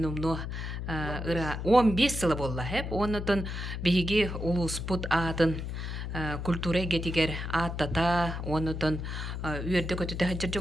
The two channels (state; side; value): noise; left; hum, 5 dB below the sound